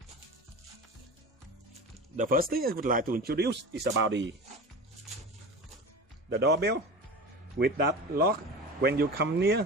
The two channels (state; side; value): normal; both; correlation 0.31